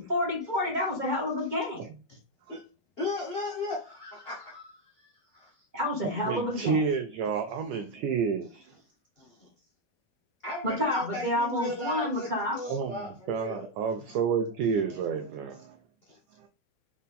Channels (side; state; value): both; normal; correlation 0.02